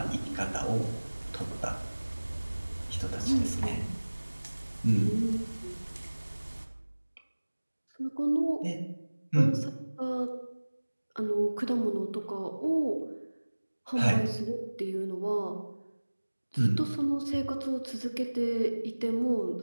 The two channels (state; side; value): inverted; both; correlation -1.00